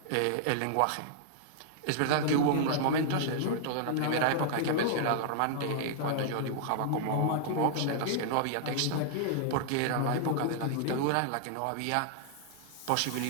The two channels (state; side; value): different; both; correlation -0.01